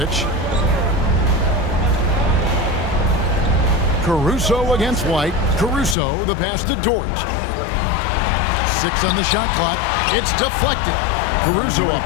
Caruso against White. Caruso, the pass to Dort. 6 on the shot clock. It's deflected. Caruso up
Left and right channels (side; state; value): right; drops out; at 6.0 s